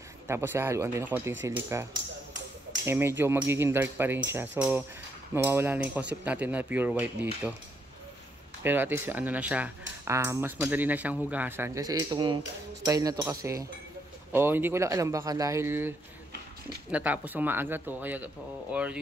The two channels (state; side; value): normal; both; correlation 0.76